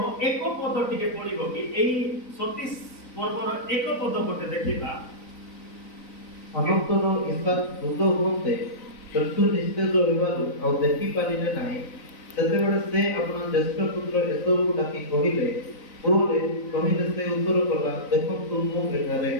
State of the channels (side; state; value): right; late; 3.9 ms